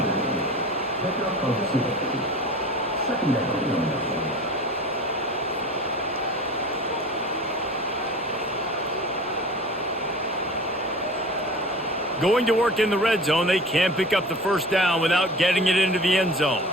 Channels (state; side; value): normal; both; correlation 0.38